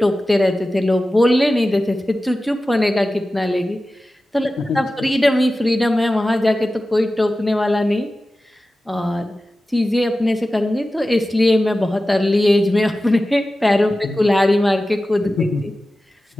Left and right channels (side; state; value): both; normal; correlation 0.95